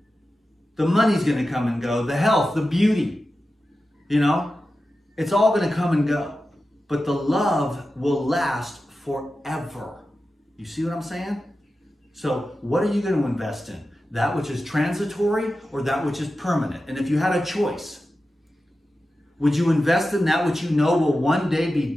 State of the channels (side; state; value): both; normal; correlation 0.93